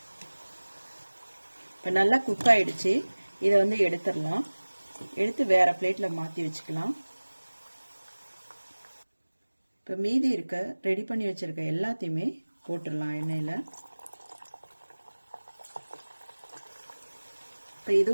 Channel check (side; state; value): both; inverted; correlation -1.00